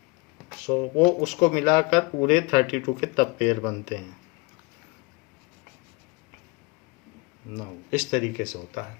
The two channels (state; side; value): quieter; right; 26.9 dB